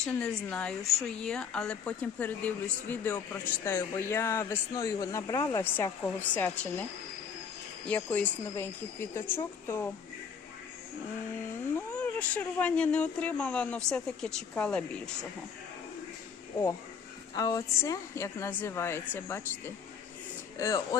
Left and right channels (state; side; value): quieter; right; 6.7 dB